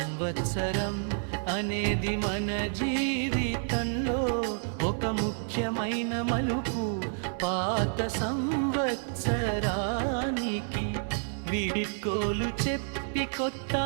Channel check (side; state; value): left; silent; 58 dB below the other